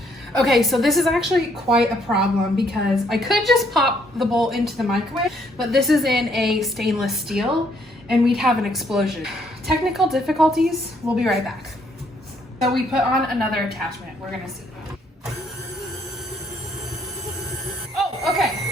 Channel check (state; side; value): normal; both; correlation 0.69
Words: Okay, so this is actually quite a problem because I could just pop the bowl into the microwave, but this is in a stainless steel and we'd have an explosion. Technical difficulties, we'll be right back. So we put on another attachment, we're gonna see. Oh, okay.